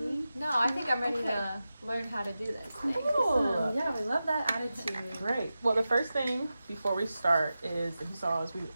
any. No, I think I'm ready to learn how to do this. Cool. Yeah, we love that attitude. Great. Well, the first thing before we start is, if you saw, is we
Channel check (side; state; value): both; inverted; correlation -0.93